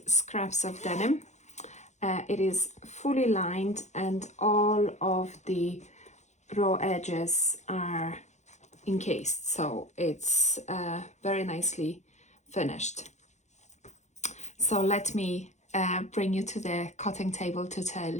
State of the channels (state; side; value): late; right; 0.33 ms